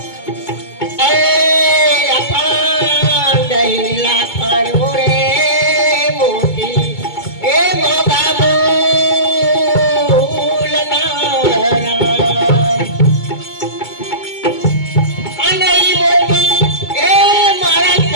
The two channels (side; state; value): right; late; 2.2 ms